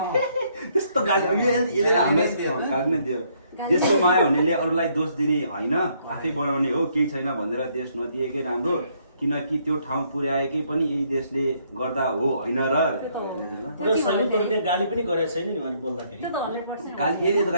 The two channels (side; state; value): both; inverted; correlation -0.69